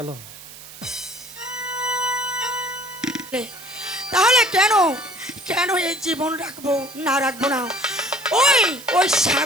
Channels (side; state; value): right; noise; hiss, 16 dB below the sound